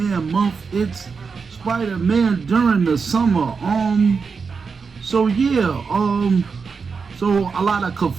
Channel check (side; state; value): left; quieter; 5.2 dB